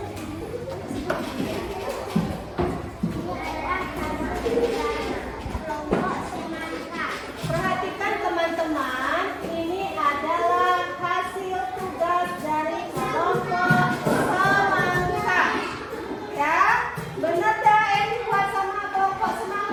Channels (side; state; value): both; identical; correlation 1.00